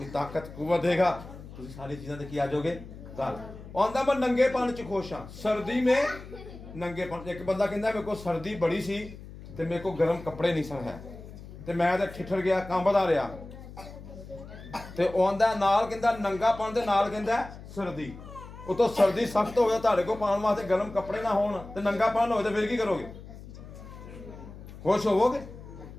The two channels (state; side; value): noise; left; hum, 15 dB below the sound